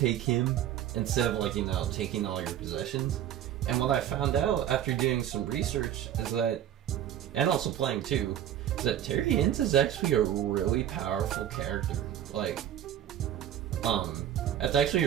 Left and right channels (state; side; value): quieter; left; 11.0 dB